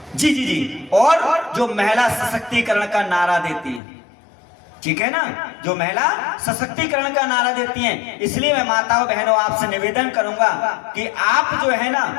जी और जो महिला सशक्तिकरण का नारा देती है, ठीक है ना, जो महिला सशक्तिकरण का नारा देती हैं। इसलिए मैं माताओं बहनों आपसे निवेदन करूंगा कि आप जो है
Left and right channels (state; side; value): drops out; right; at 3.8 s